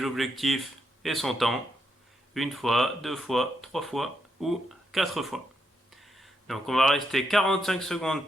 objectifs et son temps. Une fois, deux fois, trois fois ou quatre fois. Donc on va rester 45 secondes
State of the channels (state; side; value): normal; both; correlation 0.80